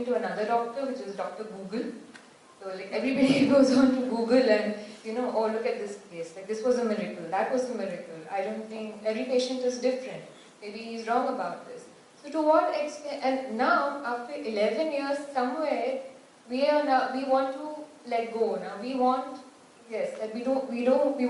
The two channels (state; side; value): identical; both; correlation 1.00